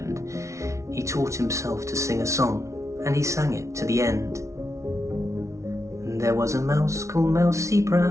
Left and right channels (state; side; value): late; left; 0.14 ms